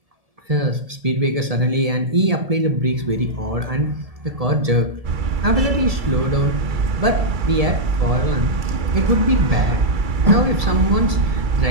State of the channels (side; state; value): left; late; 1.7 ms